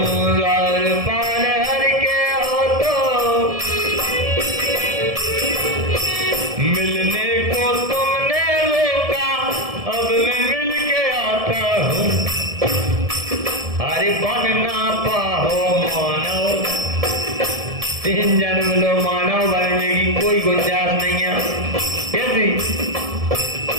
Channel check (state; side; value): late; left; 1.7 ms